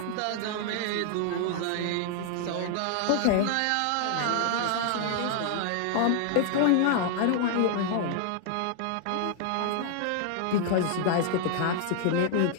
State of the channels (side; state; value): both; different; correlation 0.00